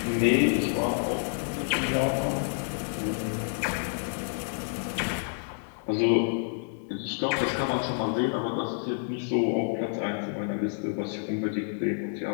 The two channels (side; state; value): right; silent; digital silence